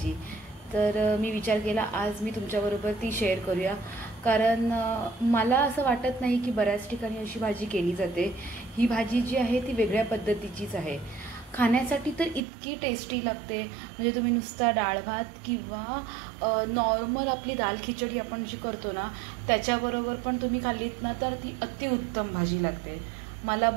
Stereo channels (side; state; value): left; drops out; at 12.4 s